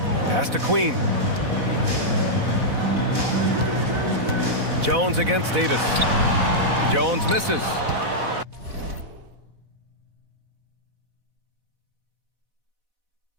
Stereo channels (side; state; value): left; late; 4.1 ms